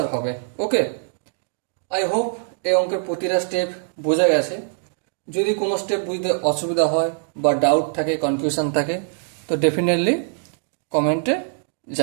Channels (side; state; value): left; silent; digital silence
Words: হবে। ওকে, আই হোপ এই অঙ্কের প্রতিটা স্টেপ বোঝা গেছে। যদি কোনো স্টেপ বুঝতে অসুবিধা হয় বা ডাউট থাকে, কনফিউশন থাকে, তো ডেফিনেটলি কমেন্টে